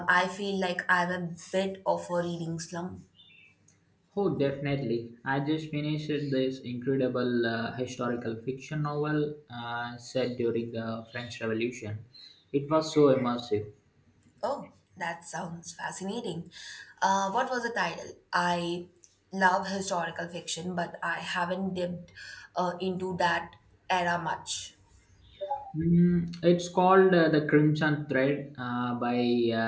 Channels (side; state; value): both; identical; correlation 1.00